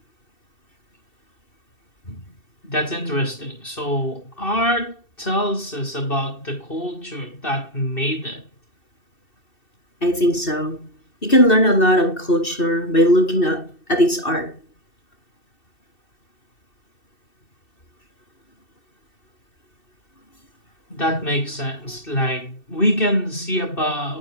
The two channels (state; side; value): late; right; 2.7 ms